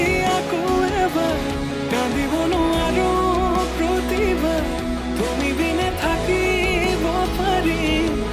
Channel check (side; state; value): both; identical; correlation 1.00